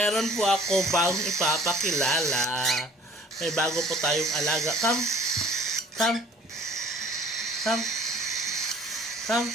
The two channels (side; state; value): both; normal; correlation 0.52